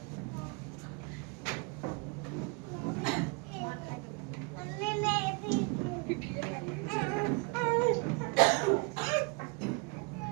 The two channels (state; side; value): quieter; left; 29.9 dB